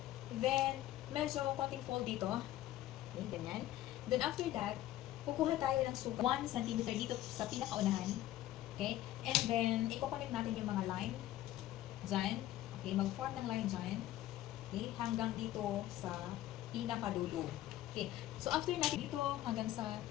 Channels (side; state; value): right; quieter; 14.2 dB